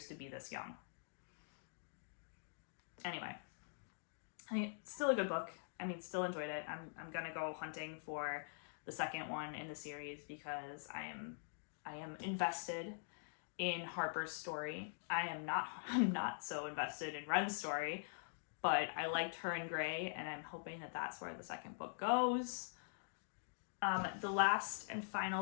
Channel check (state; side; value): silent; right; digital silence